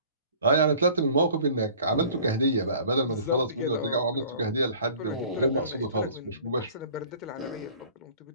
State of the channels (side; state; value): both; inverted; correlation -0.47